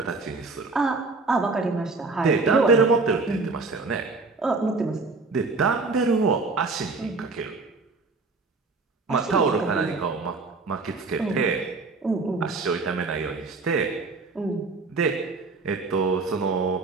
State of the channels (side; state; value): left; quieter; 3.9 dB